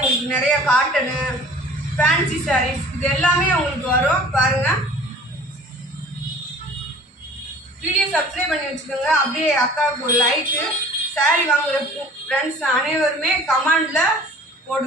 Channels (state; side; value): normal; both; correlation 0.47